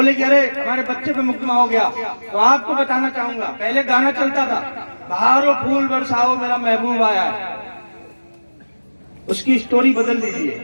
कि अरे हमारे बच्चे पे मुकदमा हो गया। तो आपको बताना चाहूंगा, पहले गाना चलता था, बहारो फूल बरसाओ मेरा महबूब आया है, उसकी स्टोरी बदल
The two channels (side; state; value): both; inverted; correlation -1.00